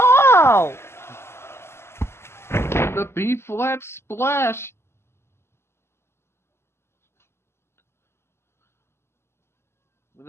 The B flat splash.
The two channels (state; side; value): late; right; 0.12 ms